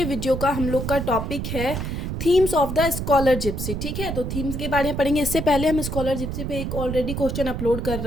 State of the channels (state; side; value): noise; right; rumble, 4 dB below the sound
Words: video का हम लोग का टॉपिक है themes of the scholar gipsy. ठीक है, तो थीम्स के बारे में पढ़ेंगे। इससे पहले हम स्कॉलर जिप्सी पे एक ऑलरेडी क्वेश्चन अपलोड कर